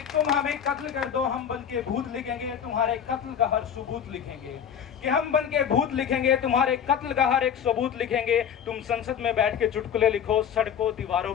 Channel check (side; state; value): right; quieter; 8.3 dB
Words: तुम हमें कत्ल कर दो, हम बन के भूत लिखेंगे, तुम्हारे कत्ल का हर सबूत लिखेंगे। कि हम बन के भूत लिखेंगे, तुम्हारे कत्ल का हर एक सबूत लिखेंगे। तुम संसद में बैठ के चुटकुले लिखो, सड़कों दीवारों